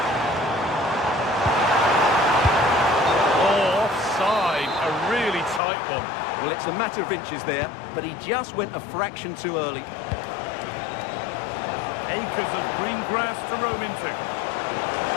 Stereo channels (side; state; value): right; drops out; at 5.6 s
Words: Oh, offside. A really tight one. Well, it's a matter of inches there, but he just went a fraction too early. Acres of green grass to roam into.